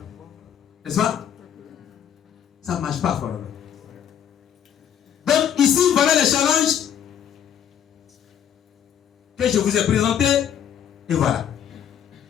N'est-ce pas? Ça ne marche pas, Forever. Donc ici, voilà les challenges que je vous ai présentés. Et voilà.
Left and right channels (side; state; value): right; quieter; 9.3 dB